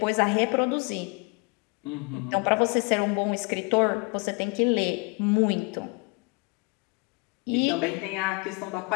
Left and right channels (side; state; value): right; quieter; 29.1 dB